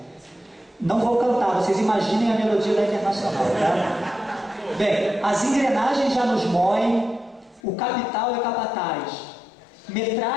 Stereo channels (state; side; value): drops out; right; at 7.6 s